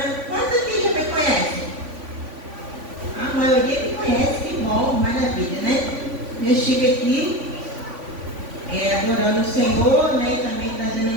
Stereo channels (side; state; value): left; late; 3.5 ms